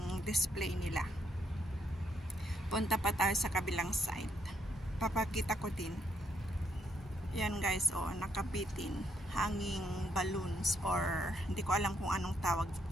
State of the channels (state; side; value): normal; both; correlation 0.74